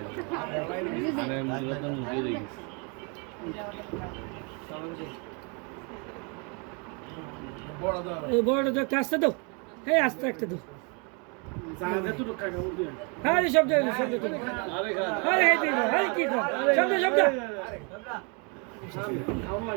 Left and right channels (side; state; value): left; quieter; 34.3 dB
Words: বড় তো একটা আসতে দাও হ্যাঁ আস্তে একটা দাও হ্যাঁ শব্দ শব্দ কি শব্দ শব্দ